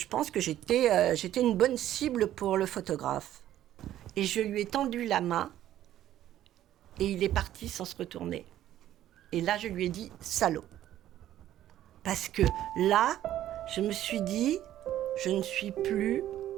pense que j'étais une bonne cible pour le photographe. Et je lui ai tendu la main et il est parti sans se retourner. Et là, je lui ai dit « salaud ». Parce que là, je me suis dit « je ne suis plus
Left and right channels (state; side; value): quieter; left; 12.5 dB